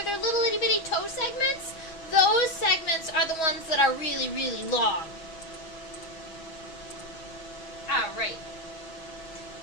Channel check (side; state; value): right; late; 6.2 ms